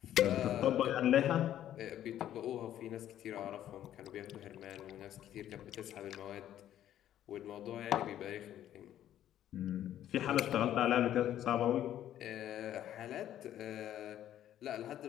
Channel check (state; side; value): quieter; right; 11.6 dB